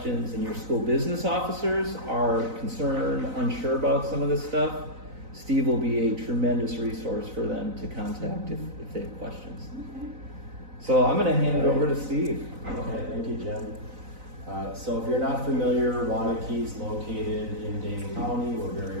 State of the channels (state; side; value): late; left; 4.0 ms